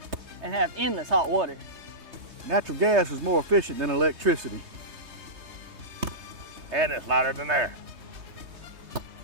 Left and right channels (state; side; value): late; left; 3.3 ms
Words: And have endless hot water. Natural gas is more efficient than electricity. And it's lighter than air.